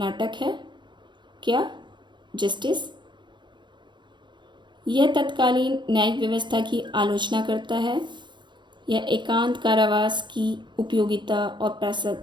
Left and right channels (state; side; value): late; left; 0.22 ms